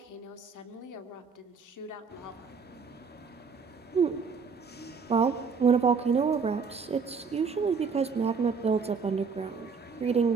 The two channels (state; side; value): quieter; left; 5.4 dB